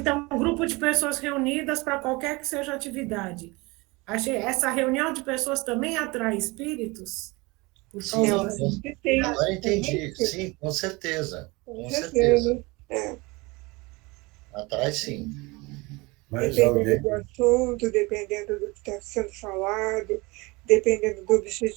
um grupo de pessoas reunidas para qualquer que seja a atividade. Essa reunião de pessoas também atrai espíritos? Por Sim, Eu causa acho assim. que tem. agora entendi. Sim, com certeza. Com Com certeza. certeza. É. Atrai sim. Mas Dependendo do alguém, assunto, dependendo do que está sendo falado, dependendo do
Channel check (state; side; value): quieter; left; 24.6 dB